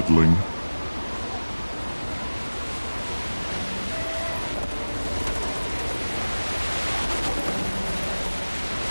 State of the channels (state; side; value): inverted; both; correlation -1.00